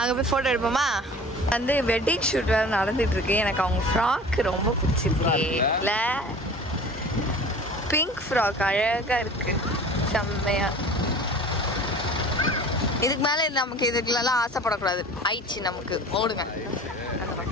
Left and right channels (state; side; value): normal; both; correlation 0.41